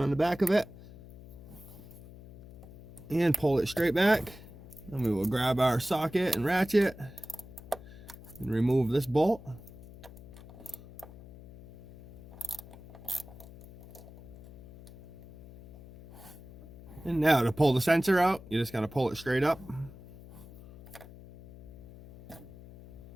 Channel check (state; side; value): noise; left; hum, 18 dB below the sound